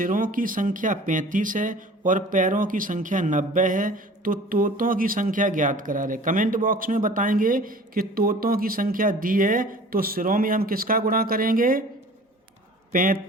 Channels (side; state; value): both; normal; correlation 0.45